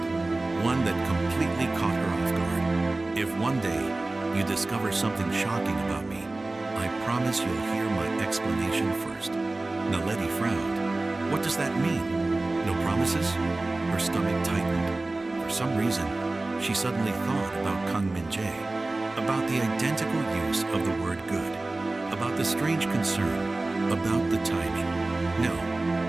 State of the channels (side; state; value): left; quieter; 3.0 dB